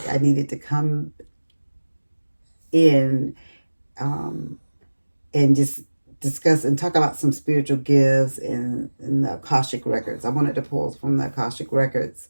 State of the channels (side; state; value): both; inverted; correlation -1.00